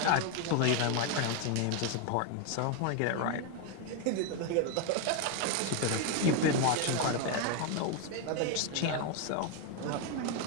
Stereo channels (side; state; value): both; different; correlation 0.01